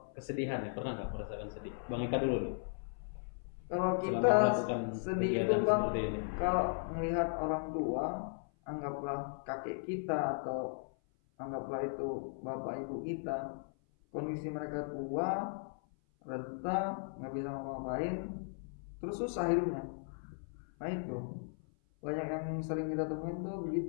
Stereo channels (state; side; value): silent; right; 53 dB below the other